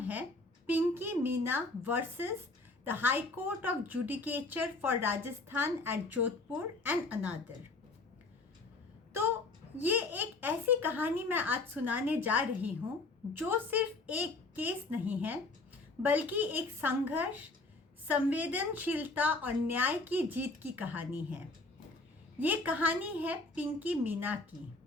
है Pinki Meena versus the High Court of judicature for Rajasthan at Jodhpur and another. तो ये एक ऐसी कहानी मैं आज सुनाने जा रही हूँ जो सिर्फ एक केस नहीं है, बल्कि एक संघर्ष, संवेदनशीलता और न्याय की जीत की कहानी है। ये कहानी है पिंकी मीना की।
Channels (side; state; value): right; quieter; 3.3 dB